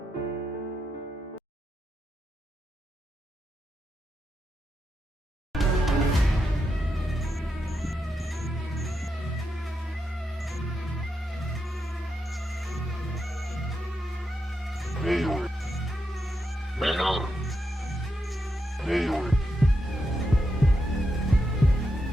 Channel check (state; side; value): normal; both; correlation 0.85